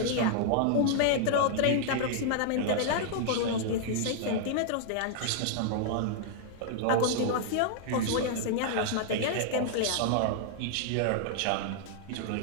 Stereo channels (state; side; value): different; both; correlation -0.01